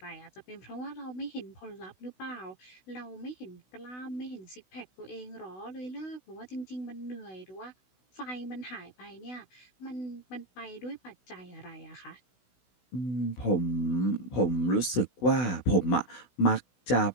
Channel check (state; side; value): late; right; 16 ms